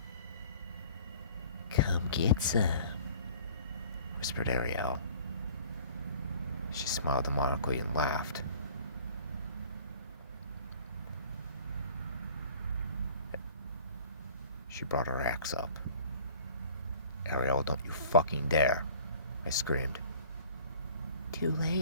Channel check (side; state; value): both; inverted; correlation -0.49